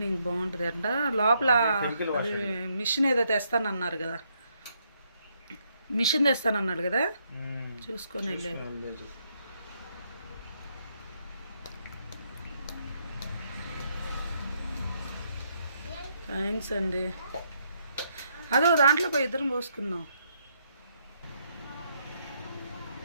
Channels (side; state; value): both; inverted; correlation -0.74